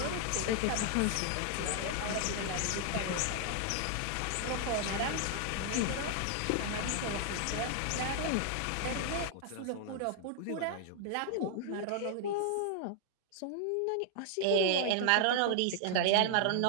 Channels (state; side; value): different; both; correlation 0.00